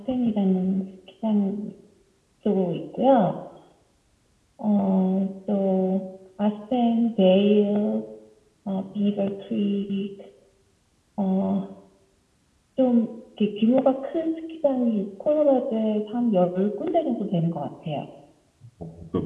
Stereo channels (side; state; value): both; identical; correlation 1.00